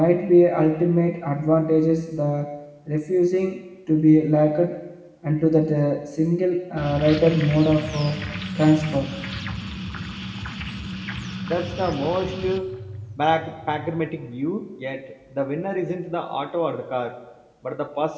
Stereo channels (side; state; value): both; identical; correlation 1.00